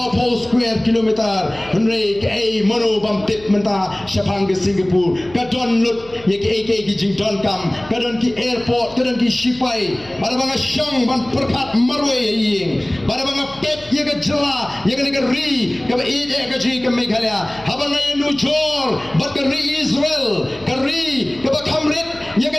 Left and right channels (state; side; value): noise; left; hum, 23 dB below the sound